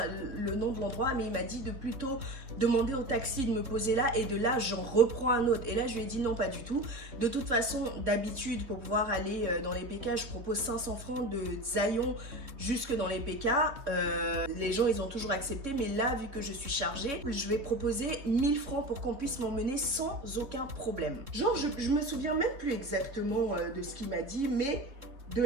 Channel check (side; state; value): left; late; 3.6 ms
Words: le nom de l'endroit, mais il m'a dit de plutôt demander au taxi de me poser là et de là, j'en reprends un autre. Et là, je lui ai dit non, pas du tout. De toute façon, d'habitude, pour pouvoir aller dans les PK, je propose 500 francs de Zayon jusque dans les PK. Les gens, ils ont toujours accepté, mais là, vu que je suis chargée, je vais proposer 1000 francs pour qu'on puisse m'emmener sans aucun problème. Genre, je me souviens même plus exactement de ce qu'il m'a dit, mais... de